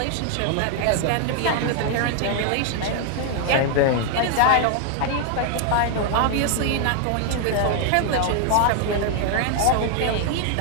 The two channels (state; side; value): different; both; correlation 0.00